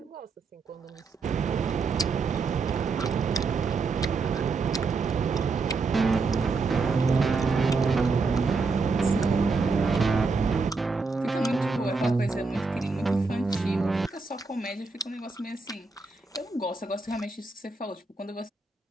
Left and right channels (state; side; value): quieter; left; 4.2 dB